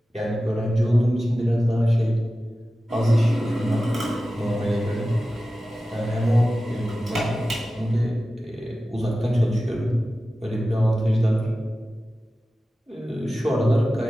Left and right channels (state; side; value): normal; both; correlation 0.95